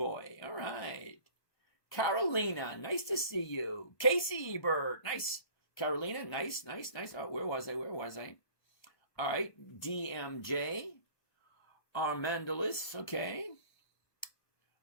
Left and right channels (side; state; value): right; late; 1.3 ms